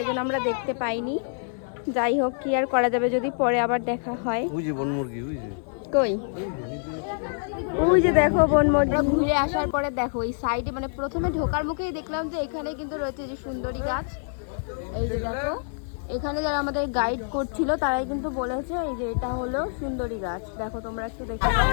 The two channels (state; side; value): silent; right; 60 dB below the other